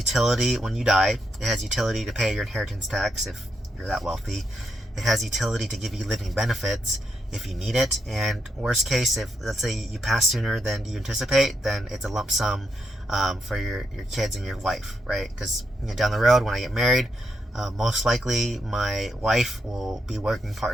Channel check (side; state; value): both; normal; correlation 0.81